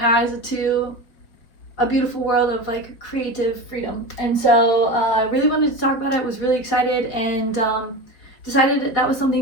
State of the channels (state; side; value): late; right; 4.7 ms